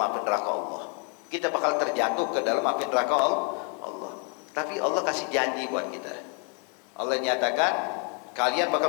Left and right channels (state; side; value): quieter; right; 38.5 dB